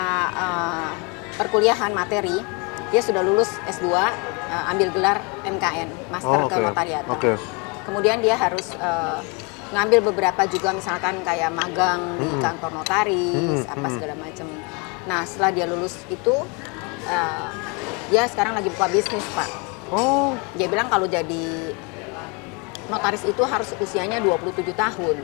perkuliahan materi dia sudah lulus S2, ambil gelar MKN, Master Oh, oke. Kenotariatan. Oke. Kemudian dia harus ngambil beberapa juga misalkan kayak magang di kantor notaris, apa segala macam. Nah, setelah dia lulus itu dia sekarang lagi buka bisnis, Pak. Oh, Dia bilang kalau jadi notaris itu harus usianya 27 tahun.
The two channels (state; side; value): quieter; right; 31.2 dB